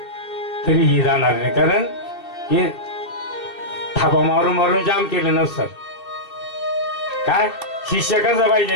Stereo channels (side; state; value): right; late; 2.7 ms